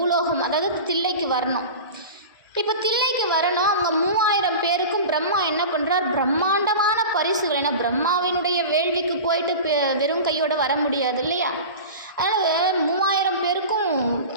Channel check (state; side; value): inverted; both; correlation -0.32